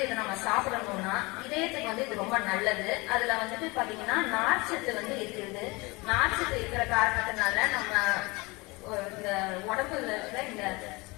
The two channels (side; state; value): right; quieter; 24.9 dB